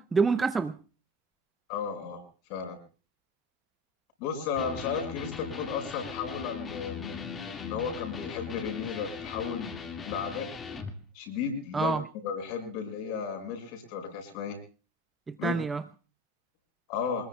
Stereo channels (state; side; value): normal; both; correlation 0.34